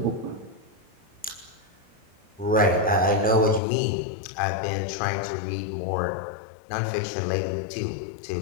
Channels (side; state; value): right; drops out; at 3.6 s